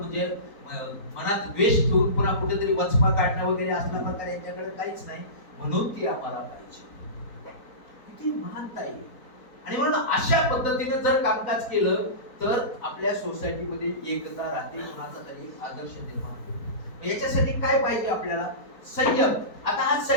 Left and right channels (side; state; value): right; late; 4.4 ms